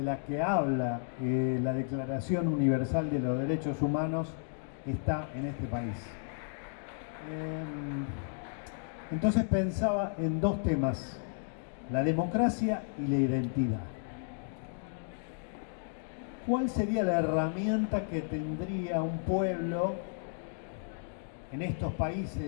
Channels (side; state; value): right; silent; digital silence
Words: la que habla la Declaración Universal de los Derechos Humanos está en este país. Entonces pensaba en dos temas, la democracia y la identidad. ¿Cuál sería la herramienta que tendría un pueblo en estos